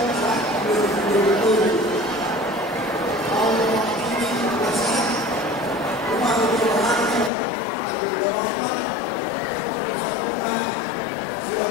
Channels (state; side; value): drops out; right; at 7.3 s